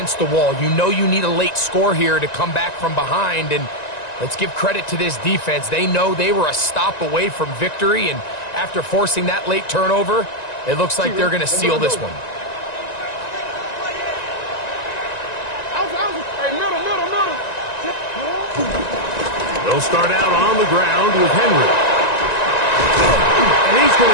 the wall. You know you need a late score here to come back from behind, and let's give credit to this defense. They know they were a stop away from victory, and after forcing that late turnover, it looks like they're going to seal this one. They'll start out on the ground with Henry. And he's going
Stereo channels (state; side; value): late; right; 1.9 ms